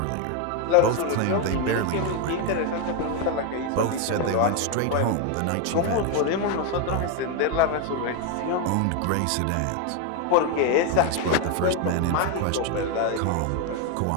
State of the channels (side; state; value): both; different; correlation 0.01